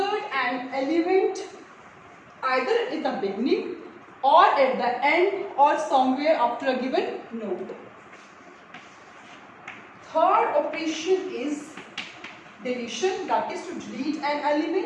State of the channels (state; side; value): identical; both; correlation 1.00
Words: an element either in the beginning or at the end or somewhere after a given node. Third operation is deletion, that is to delete an